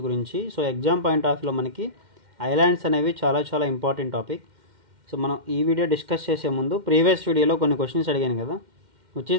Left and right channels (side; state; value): left; late; 2.1 ms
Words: గురించి. సో ఎగ్జామ్ పాయింట్ ఆఫ్ వ్యూలో మనకి ఐలాండ్స్ అనేవి చాలా ఇంపార్టెంట్ టాపిక్. సో మనం ఈ వీడియో డిస్కస్ చేసే ముందు ప్రీవియస్ వీడియోలో కొన్ని క్వశ్చన్స్ అడిగాను కదా, which